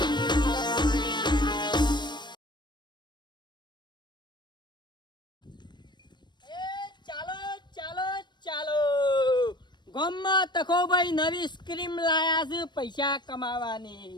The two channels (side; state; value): right; late; 0.22 ms